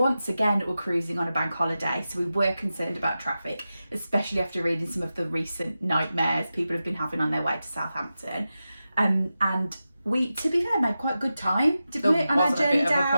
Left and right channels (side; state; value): both; inverted; correlation -0.92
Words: again we're cruising on a bank holiday, so we were concerned about traffic, especially after reading some of the recent nightmares people have been having on their way to Southampton. And we, to be fair, made quite good time, didn't we, on our journey There wasn't a bit down? of a